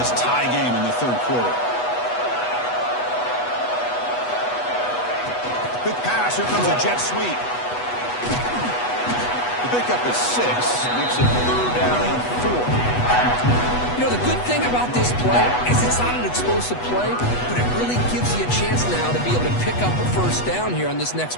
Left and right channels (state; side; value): late; right; 8.2 ms